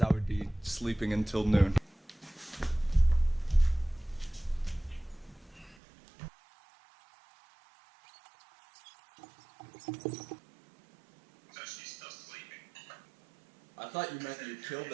would be sleeping until noon. So she's still sleeping. I thought you meant you killed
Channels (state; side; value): drops out; left; at 5.8 s